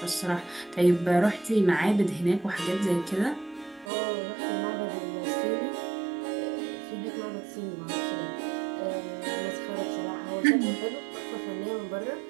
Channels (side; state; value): left; drops out; at 3.9 s